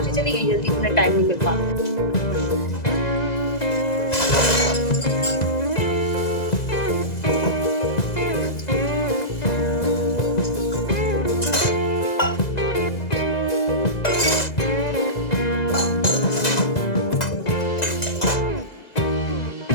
चली गई जल्दी, उन्हें टाइम नहीं मिल पाता।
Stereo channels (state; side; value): late; right; 1.9 ms